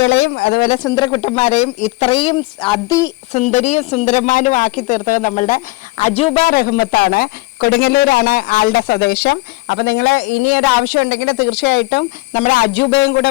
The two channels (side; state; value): right; quieter; 22.2 dB